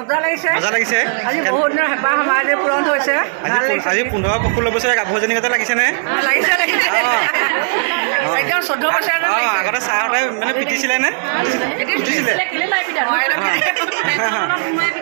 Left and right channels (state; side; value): silent; left; digital silence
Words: লাগিছে আজি 15-16 বছৰীয়া গাভৰুজনী গতে লাগিছেনে আগতে চাহতে মানে পিটিছিলে নে